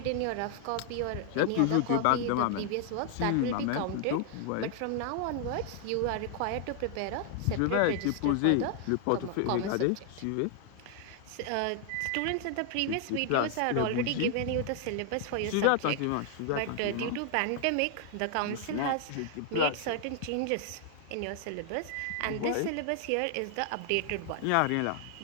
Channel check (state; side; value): different; both; correlation 0.00